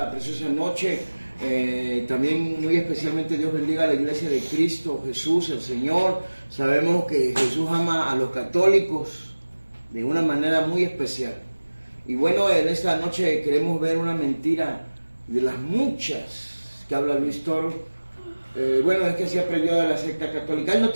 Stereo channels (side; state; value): both; inverted; correlation -1.00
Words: preciosa noche. También muy especialmente Dios bendiga a la iglesia de Cristo Jesús, el Señor. Sabemos que Jesús ama a los católicos de una manera muy especial. Y bueno, en esta noche queremos ver una mentira de las muchas que habla Luis Toro. Bueno, es que se aprendió de la secta católica. Él no